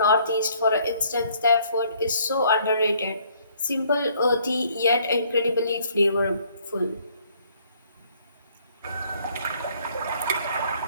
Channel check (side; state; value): both; inverted; correlation -0.63